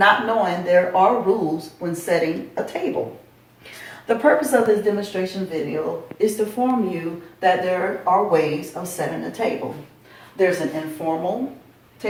knowing there are rules when setting a table. The purpose of this demonstration video is to inform you that there are ways of setting a table. There's an informal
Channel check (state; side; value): identical; both; correlation 1.00